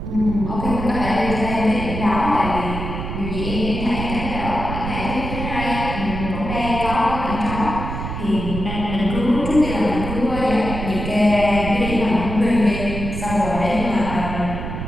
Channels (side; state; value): right; noise; rumble, 6 dB below the sound